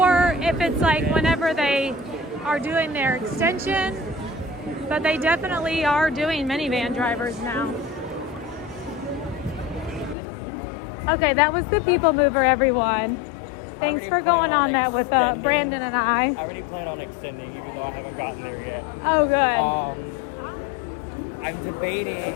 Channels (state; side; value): drops out; right; at 10.2 s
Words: if it's like whenever they are doing their extension, but they definitely are doing minivan drivers now. Okay, that was the people mover, everyone. Thanks for going on that with Brandon and I. I already plan on extending, even though I haven't gotten there yet. Oh, good. I'm debating.